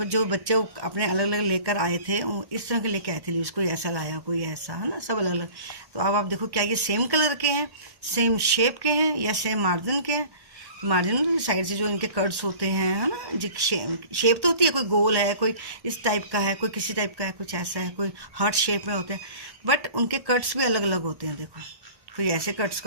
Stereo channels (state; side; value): late; left; 1.1 ms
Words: जो बच्चे अपने अलग अलग लेकर आए थे इस तरह के लेके आए थे लीव्स, कोई ऐसा लाया कोई ऐसा, है ना, सब अलग अलग। तो अब आप देखो क्या ये सेम कलर के हैं, सेम शेप के हैं या सेम मार्जिन के हैं। मार्जिन साइड से जो इनके कर्ड्स होते हैं, है ना, जो शेप तो होती है, कोई गोल है, कोई इस टाइप का है, कोई किसी टाइप का है, कुछ ऐसा है, कोई हार्ट शेप में होते हैं, बट उनके कट्स भी अलग अलग होते हैं। देखो कोई ऐसे कट्स